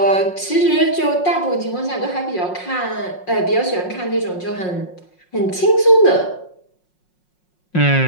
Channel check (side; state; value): right; late; 5.5 ms